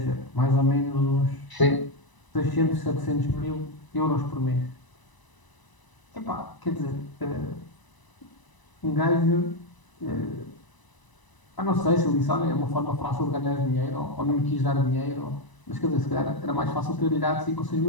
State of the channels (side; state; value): right; late; 1.0 ms